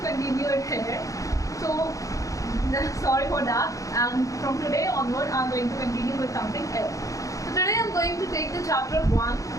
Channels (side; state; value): right; late; 0.16 ms